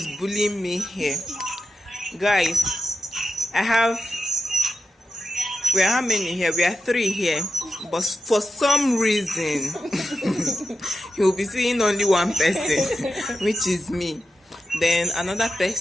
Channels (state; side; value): normal; both; correlation 0.90